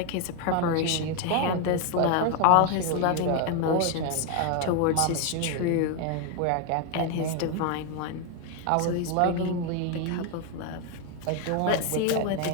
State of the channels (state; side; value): different; both; correlation 0.01